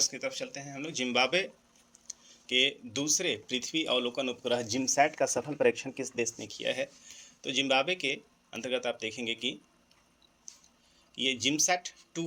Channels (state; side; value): identical; both; correlation 1.00